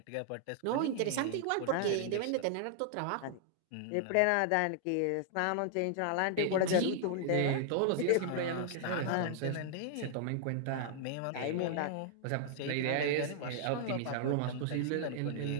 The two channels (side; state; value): both; different; correlation -0.01